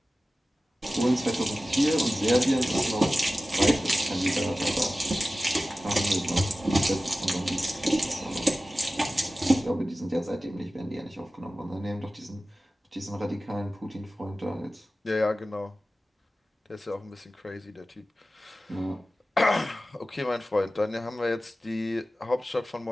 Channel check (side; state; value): both; normal; correlation 0.95